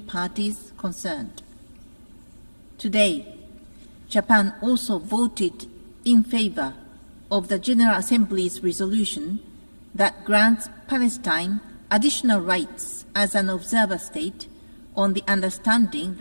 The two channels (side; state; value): both; inverted; correlation -1.00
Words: parties concerned. Today, Japan also voted in favor of the General Assembly's resolution that grants Palestine additional rights as an observer state on the understanding